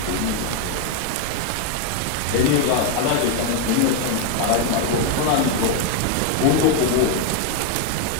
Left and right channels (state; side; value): different; both; correlation 0.01